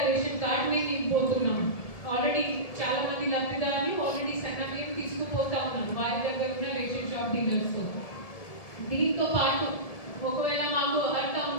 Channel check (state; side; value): late; right; 1.7 ms